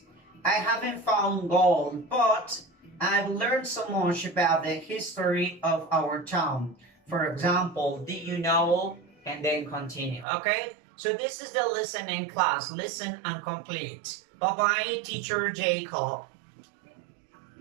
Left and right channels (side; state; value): left; drops out; at 10.2 s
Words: I haven't found gold, but I've learned so much about the history of our town. For example, did you know? And then continue. Okay? So this is the listening class. Listen and complete. Bye bye, teacher Jacob.